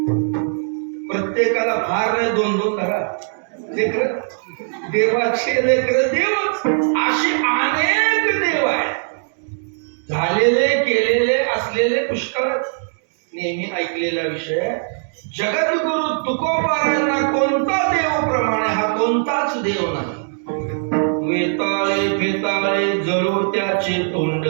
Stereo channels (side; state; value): left; silent; digital silence